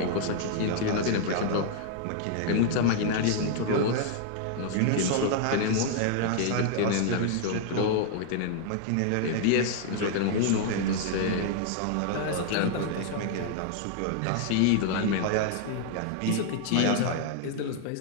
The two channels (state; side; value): different; both; correlation 0.00